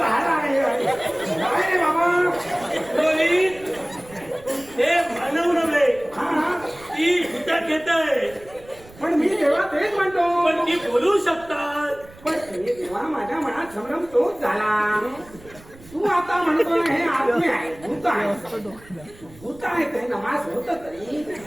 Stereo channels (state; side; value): noise; right; rumble, 22 dB below the sound